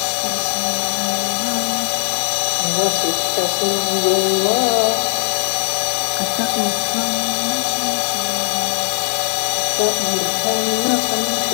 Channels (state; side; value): silent; right; 67 dB below the other